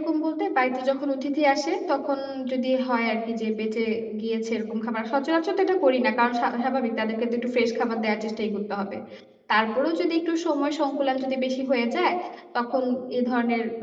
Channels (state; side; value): identical; both; correlation 1.00